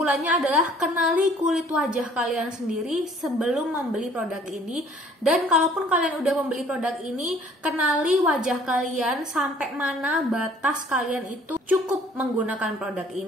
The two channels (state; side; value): normal; both; correlation 0.56